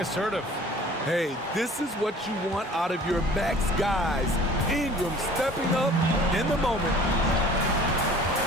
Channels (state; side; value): normal; both; correlation 0.48